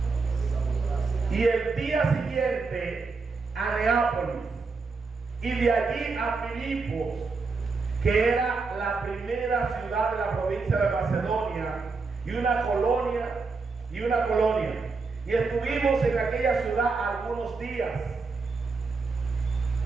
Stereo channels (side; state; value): left; quieter; 4.3 dB